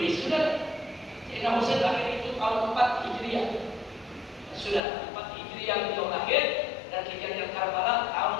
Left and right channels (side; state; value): right; drops out; at 4.8 s